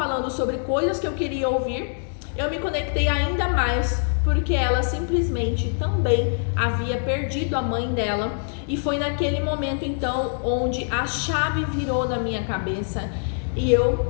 sobre coisas que eu queria ouvir, eu me conectei ainda mais, porque ela simplesmente também havia perdido a mãe dela. E foi naquele momento então onde a chave virou na minha cabeça E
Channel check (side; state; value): right; silent; digital silence